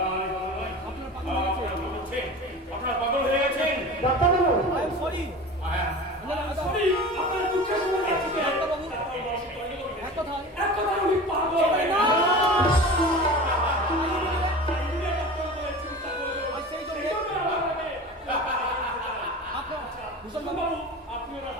আপনারা পাগল হয়ে গেছেন। ডাক্তারবাবু, I am sorry. সরি, আপনার দুঃখের সময় যাচ্ছি। ডাক্তারবাবু, এক কথায় আমি পাগল। না! আর সেই জন্যে আপনার ভূষণ বাবু,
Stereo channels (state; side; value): normal; both; correlation 0.34